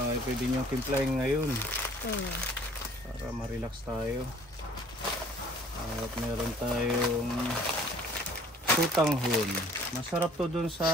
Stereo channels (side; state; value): both; normal; correlation 0.54